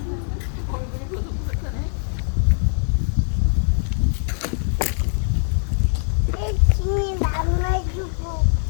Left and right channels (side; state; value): right; silent; 56 dB below the other